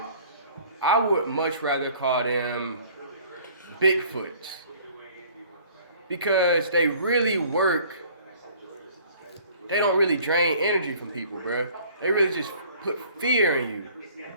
I would much rather call them Bigfoots. Because they really work. They don't really drain energy from people, bro. They really just put fear in you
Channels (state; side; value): inverted; both; correlation -0.53